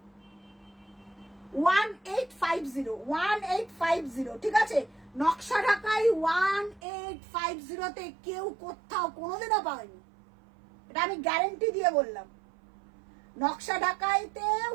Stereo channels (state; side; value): drops out; left; at 6.8 s